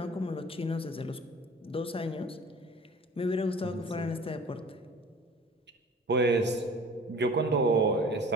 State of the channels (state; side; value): normal; both; correlation 0.45